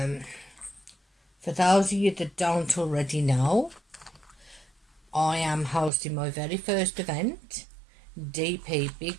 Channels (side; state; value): left; drops out; at 5.9 s